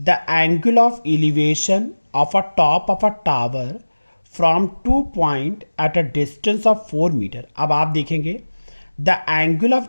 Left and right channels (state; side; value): inverted; both; correlation -1.00